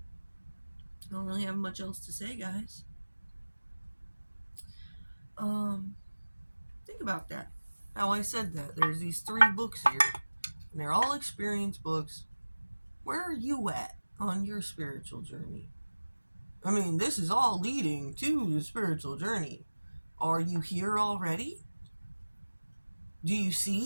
I don't really have much else to say, guys. Think about that. How I said that. There's these 3 books here. and they're all experience books. Where are you at on your spiritual journey? I mean, this is all leading to the spiritual journey. Are you here already? Do you see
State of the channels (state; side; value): inverted; both; correlation -1.00